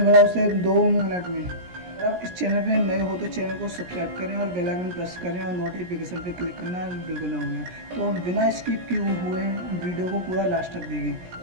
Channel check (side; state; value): left; late; 17 ms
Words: बना उसे 2 मिनट में। अगर आप इस चैनल पे नए हो तो चैनल को सब्सक्राइब करें और बेल आइकन प्रेस करें और नोटिफिकेशन पे क्लिक करना बिल्कुल ना भूलें। तो बिना स्किप किए हुए वीडियो को पूरा लास्ट तक देखें।